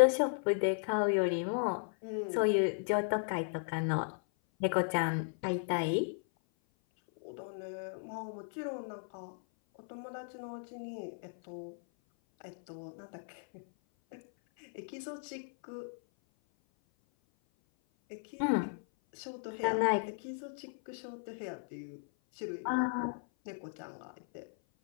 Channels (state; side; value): silent; right; 54 dB below the other